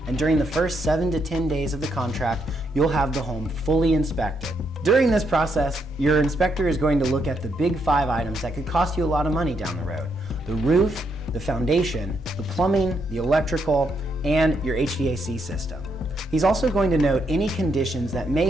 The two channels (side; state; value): both; normal; correlation 0.77